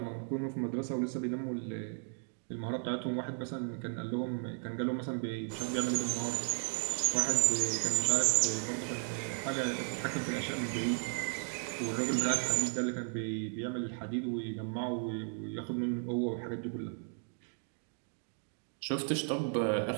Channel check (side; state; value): left; silent; 54 dB below the other